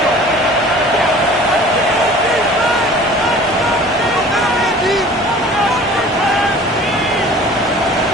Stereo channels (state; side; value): normal; both; correlation 0.46